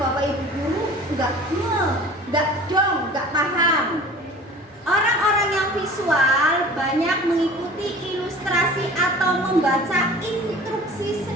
ibu guru, nggak paham. Orang-orang yang visual banyak mengikuti ilustrasi atau membaca instruksi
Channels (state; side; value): normal; both; correlation 0.43